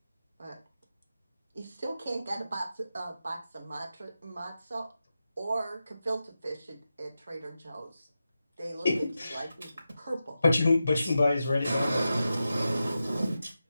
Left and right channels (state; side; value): inverted; both; correlation -0.91